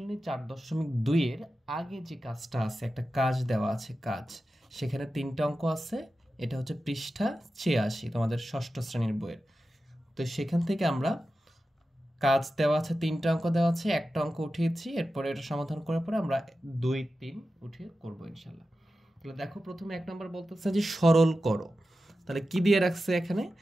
4.2 এর আগে যে কাজটা আছে, একটা কাজ দেওয়া আছে, সেখানে 3টা অঙ্ক আছে। এটা হচ্ছে পৃষ্ঠা 86 তোমাদের ষষ্ঠ শ্রেণীর বইয়ের। তো সেখান থেকে আমরা কাজ দেওয়া আছে, 3টা অঙ্ক দেওয়া আছে, একটা অঙ্ক উঠিয়েছি। এরপরে এটা সমাধান করার পরে আমরা 2, 3 উঠিয়ে করবো ইনশাল্লাহ। তাহলে দেখো, প্রথমে 1 নম্বর বলতেছে যে সরল করো। তাহলে কি দিয়ে রাখছে এখানে?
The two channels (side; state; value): both; normal; correlation 0.92